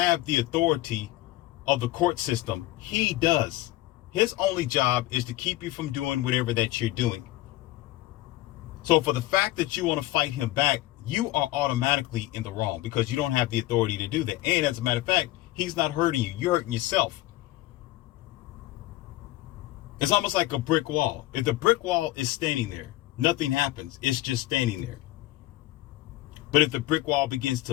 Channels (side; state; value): right; quieter; 17.2 dB